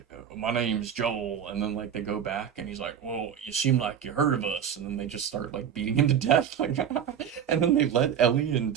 my name's Joel, and then like they go back, and he's like, "Well, you seem like you heard of us," and then they just start like beating him to death, like, and then they let Ellie and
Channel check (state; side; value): quieter; left; 8.6 dB